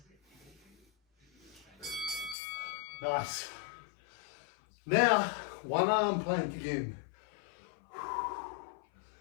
Nice. Now, one arm plank again.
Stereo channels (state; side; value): drops out; right; at 2.4 s